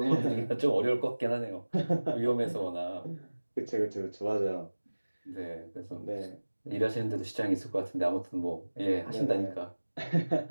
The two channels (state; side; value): inverted; both; correlation -1.00